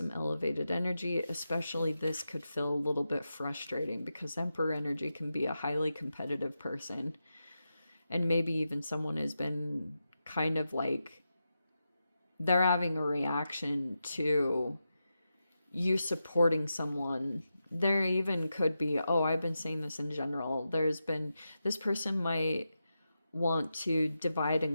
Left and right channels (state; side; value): inverted; both; correlation -0.89